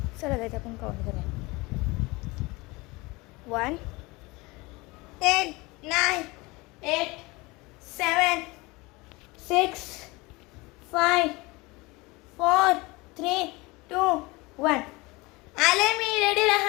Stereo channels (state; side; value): quieter; right; 23.7 dB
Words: चला जायचं आपण काउंट करूया. 1 8 9 8 7 6 5 4 3 2 1. आले मी, रेडी